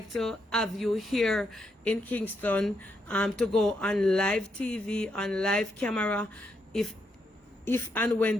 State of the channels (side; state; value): both; normal; correlation 0.79